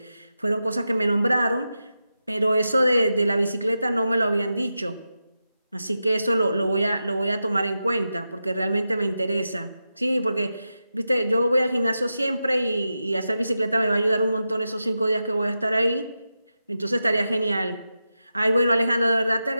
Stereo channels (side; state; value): both; inverted; correlation -0.90